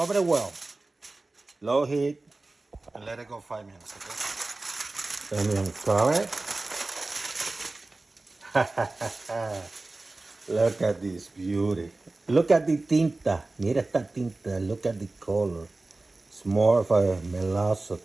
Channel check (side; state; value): left; quieter; 3.1 dB